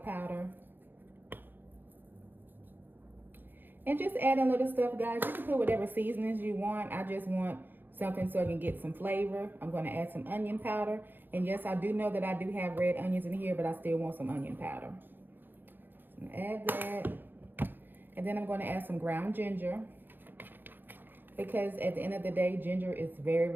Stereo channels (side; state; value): left; late; 0.094 ms